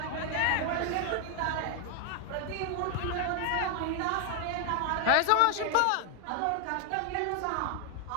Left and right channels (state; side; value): different; both; correlation 0.00